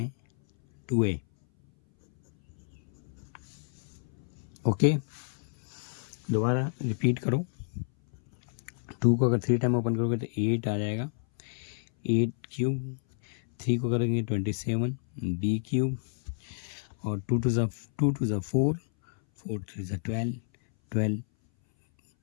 2a। ओके, दोबारा रिपीट करो। 2 को अगर 3 टाइम ओपन करोगे तो 8 आ जाएगा, 8³ 3 को करेंगे 27 b³ और 2 to the 4, 4 3 जा 12, 12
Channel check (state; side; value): silent; right; 58 dB below the other